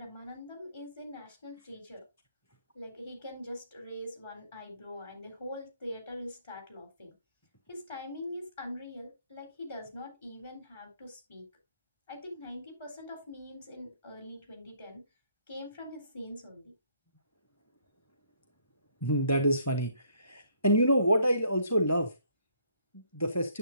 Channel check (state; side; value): inverted; both; correlation -0.65